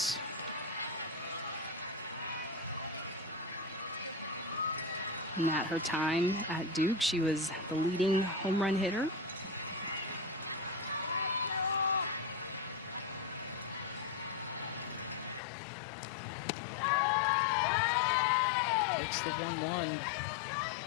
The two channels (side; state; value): right; drops out; at 15.4 s